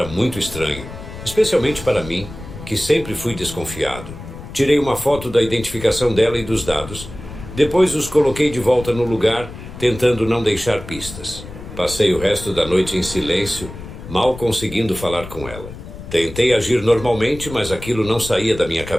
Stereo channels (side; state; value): left; noise; rumble, 13 dB below the sound